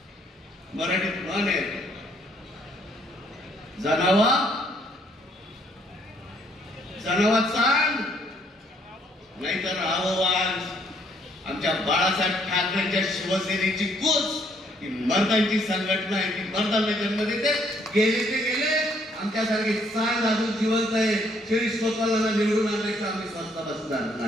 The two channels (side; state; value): both; normal; correlation 0.67